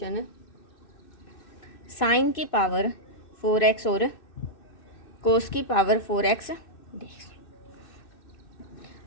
साइन की पावर 4x और कोस की पावर 4x dx।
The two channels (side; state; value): right; late; 2.6 ms